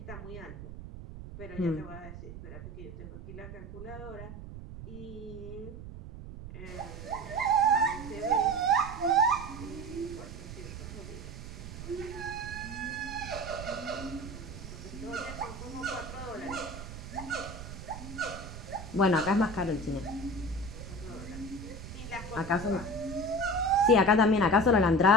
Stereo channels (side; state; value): right; noise; rumble, 11 dB below the sound